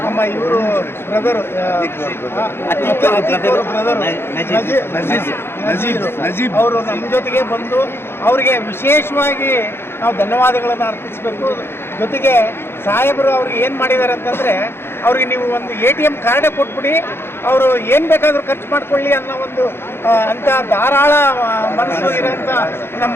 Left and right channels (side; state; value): right; late; 0.11 ms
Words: ನಮ್ಮ ಇವರು ಬ್ರದರು ನಜೀಬ್ ಅವರು ನಮ್ಮ ಜೊತೆಗೆ ಬಂದು ಅವರಿಗೆ ವಿಶೇಷವಾಗಿ ನಾವು ಧನ್ಯವಾದಗಳನ್ನು ಅರ್ಪಿಸಬೇಕು. ಜೊತೆಗೆ ಸಾಹೇಬರು ಅವ್ರಿಗೆ ಏನು ಮಾಡಿದ್ದಾರೆ ಅಂತಂದರೆ, ಅವ್ರಿಗೆ ನೀವು ಒಂದು ATM ಕಾರ್ಡೇ ಕೊಟ್ಬಿಡಿ, ಅವರು ಏನು ಬೇಕಾದರೂ ಖರ್ಚು ಮಾಡ್ಕೊಳ್ಳಿ ಅನ್ನೋ ಒಂದು ಅಂಥ ಧಾರಾಳ ಮನಸ್ಸು ಇರೋಂಥ